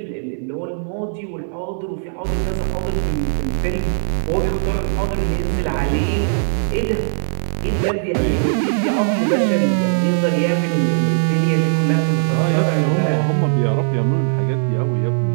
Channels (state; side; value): silent; left; digital silence